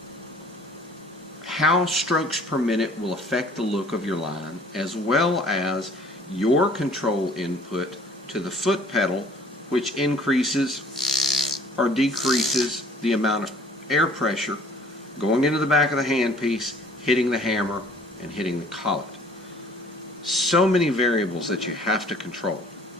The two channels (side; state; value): both; normal; correlation 0.54